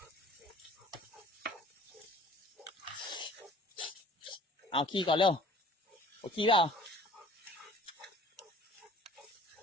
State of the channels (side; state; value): both; normal; correlation 0.50